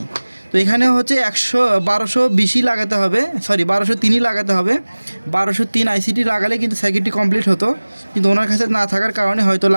তো এখানে হচ্ছে 1220ই লাগাতে হবে, সরি 1203ই লাগাতে হবে। 1203 আইসিটি লাগালে কিন্তু সার্কিটটি কমপ্লিট হতো, কিন্তু ওনার কাছে না থাকার কারণে হয়তো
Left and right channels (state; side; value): inverted; both; correlation -1.00